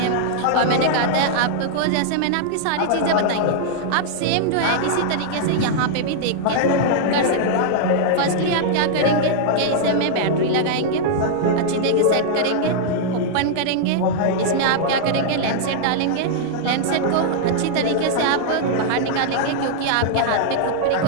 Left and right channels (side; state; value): both; different; correlation -0.02